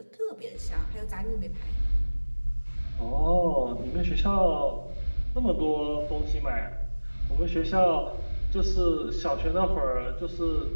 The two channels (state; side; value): inverted; both; correlation -1.00